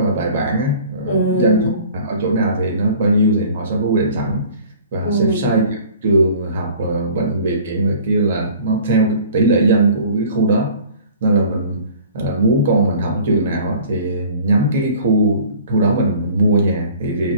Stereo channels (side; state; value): both; inverted; correlation -0.48